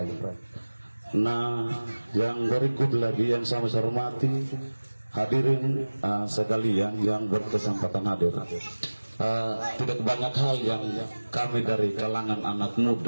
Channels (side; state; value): both; inverted; correlation -1.00